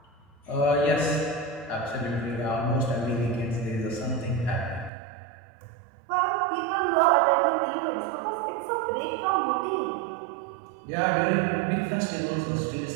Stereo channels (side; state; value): left; drops out; at 4.9 s